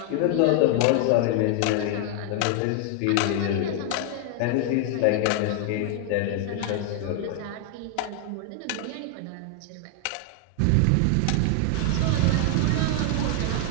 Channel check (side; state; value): both; different; correlation 0.00